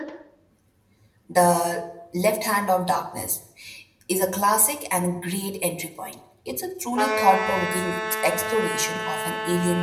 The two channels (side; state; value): both; identical; correlation 1.00